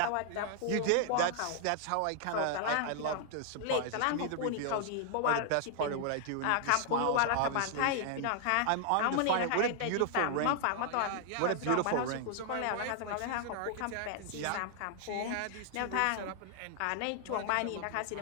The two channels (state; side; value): different; both; correlation 0.00